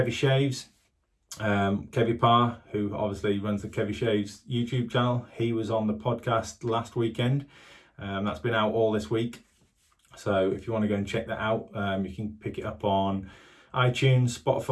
Shaves, Kevy Parr, who obviously runs the Kevy Shaves YouTube channel. He was on the podcast last weekend. That's been out all this week, so if you want to go and check that out, you can pick it up on iTunes,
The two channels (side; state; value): both; identical; correlation 1.00